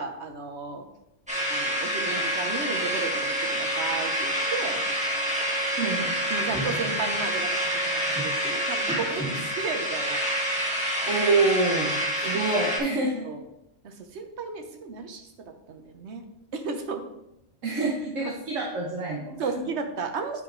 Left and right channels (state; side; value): normal; both; correlation -0.09